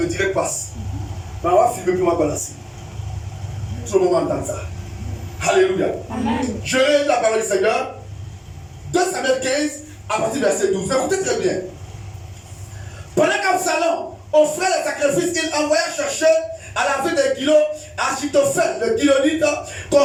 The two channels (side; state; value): both; identical; correlation 1.00